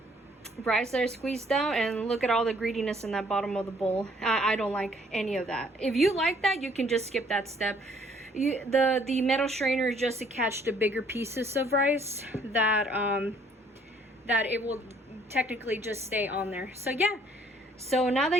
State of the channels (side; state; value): both; normal; correlation 0.62